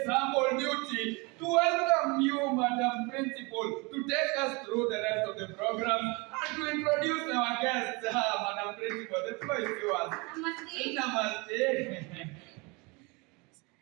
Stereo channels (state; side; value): quieter; left; 28.0 dB